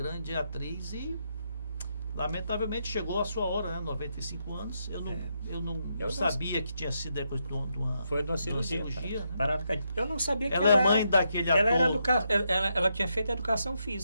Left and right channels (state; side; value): inverted; both; correlation -0.81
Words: atriz e lamentavelmente chegou a sua hora, né? 95 anos. Eu não sabia que tinha sido depois de uma Foi de uma cirurgia. né? Parada cardíaca. Eu não sabia que Ela é mãe daquele ator. Ela tinha feito educação